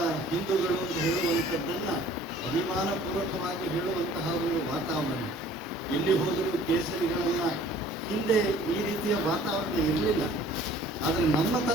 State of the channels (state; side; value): normal; both; correlation 0.52